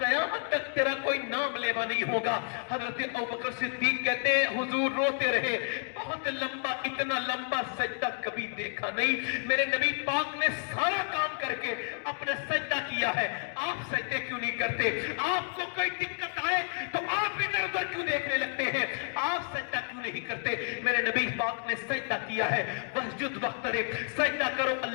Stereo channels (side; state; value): right; silent; 57 dB below the other